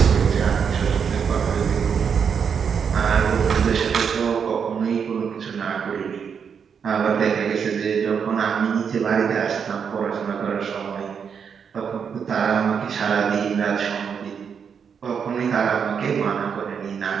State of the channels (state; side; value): quieter; left; 6.9 dB